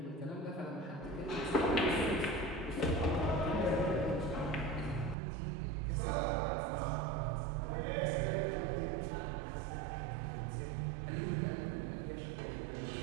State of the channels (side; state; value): left; drops out; at 5.2 s